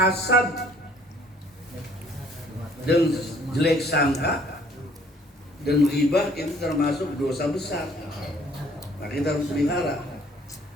dan jelek sangka dan ghibah itu termasuk dosa besar. Nah, kita harus pelihara.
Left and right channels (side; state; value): both; normal; correlation 0.58